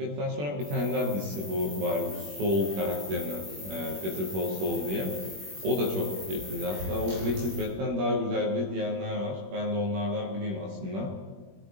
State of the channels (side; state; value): left; late; 21 ms